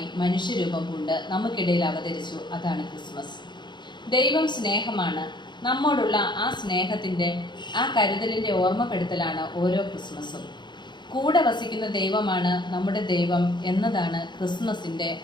മനുഷ്യരൂപം കൊണ്ട് നമുക്കിടയിൽ അവതരിച്ചു. അതാണ് ക്രിസ്മസ്. ദൈവം സ്നേഹമാണ്. നമ്മോടുള്ള ആ സ്നേഹത്തിൻ്റെ, ആ കരുതലിൻ്റെ ഓർമ്മപ്പെടുത്തലാണ് ഓരോ ക്രിസ്മസും. കൂടെ വസിക്കുന്ന ദൈവമാണ് നമ്മുടെ ദൈവം എന്നതാണ് ക്രിസ്മസിൻ്റെ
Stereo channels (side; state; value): right; late; 0.22 ms